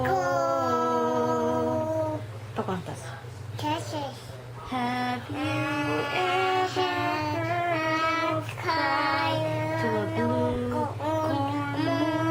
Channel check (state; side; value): identical; both; correlation 1.00